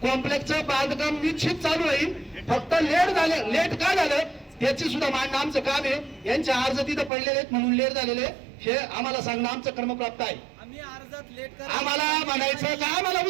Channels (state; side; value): drops out; left; at 7.1 s